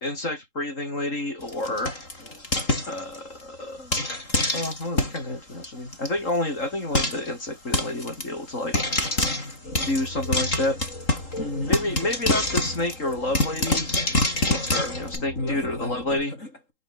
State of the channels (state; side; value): late; right; 3.8 ms